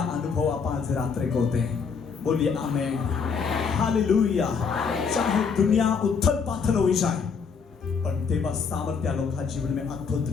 अनुभव आपण आज रात्री होते हैं, बोलिए आमेन, हालेलुया। चाहे दुनिया उथल पाथल हो जाए पण तेव्हा सामर्थ्य लोका जीवन में अद्भुत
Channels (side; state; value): right; quieter; 5.7 dB